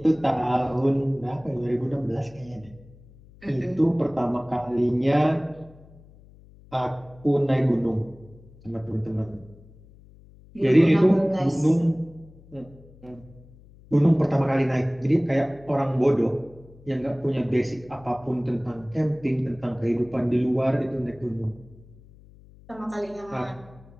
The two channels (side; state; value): left; noise; hum, 24 dB below the sound